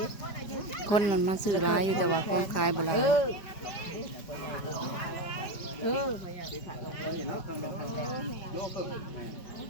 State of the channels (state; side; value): late; right; 5.0 ms